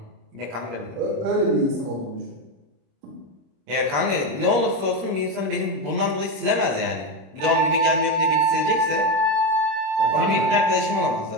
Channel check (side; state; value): left; late; 26 ms